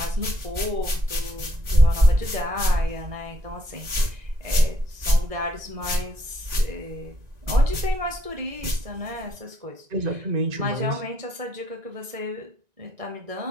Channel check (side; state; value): left; late; 1.9 ms